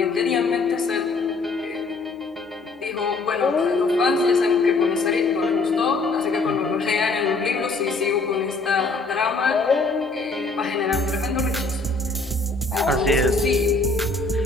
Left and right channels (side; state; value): right; quieter; 3.6 dB